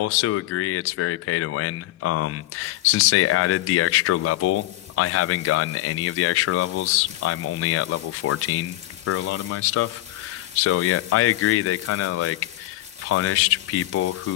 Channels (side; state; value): right; quieter; 16.7 dB